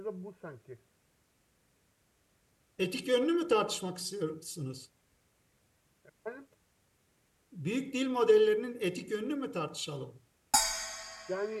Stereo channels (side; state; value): both; identical; correlation 1.00